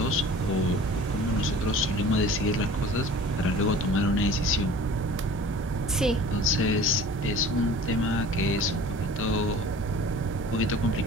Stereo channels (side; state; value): both; normal; correlation 0.44